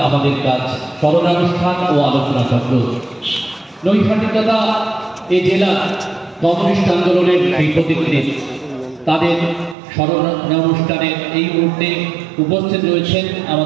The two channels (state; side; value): drops out; left; at 9.8 s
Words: আমাদের কাজ স্মরণানুষ্ঠান ও আলোচনা চক্র। নৈহাটি তথা এই জেলার কমিউনিস্ট আন্দোলনের সেই প্রতিনিধি তাদের স্মরণানুষ্ঠানে এই মুহূর্তে উপস্থিত রয়েছেন